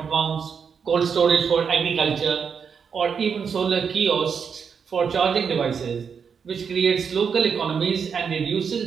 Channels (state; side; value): quieter; left; 6.5 dB